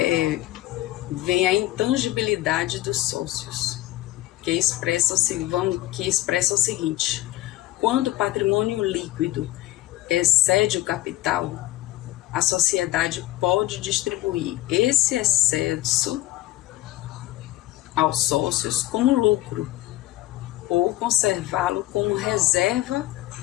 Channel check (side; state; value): right; quieter; 16.6 dB